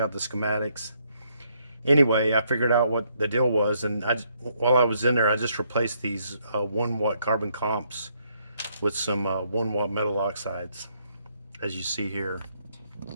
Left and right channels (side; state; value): both; inverted; correlation -0.72